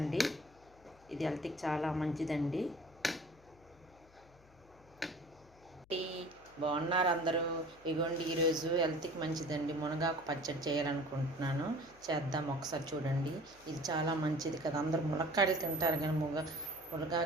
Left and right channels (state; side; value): noise; left; hum, 27 dB below the sound